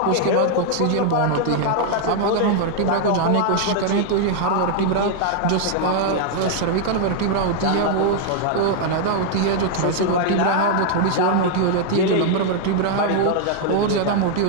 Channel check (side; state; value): both; different; correlation 0.00